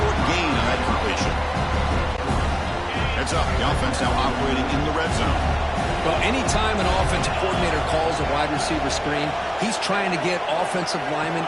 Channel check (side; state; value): both; identical; correlation 1.00